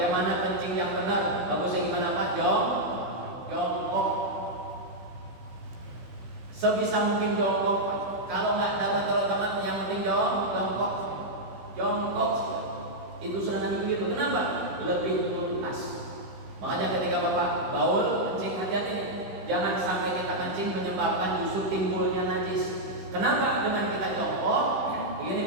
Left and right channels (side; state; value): left; late; 15 ms